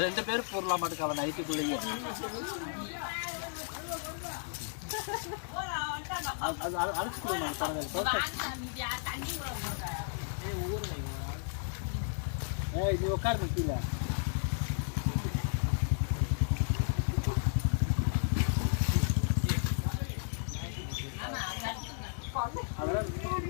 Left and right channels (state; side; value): silent; right; digital silence